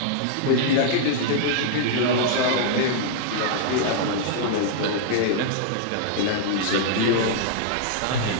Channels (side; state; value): both; different; correlation -0.01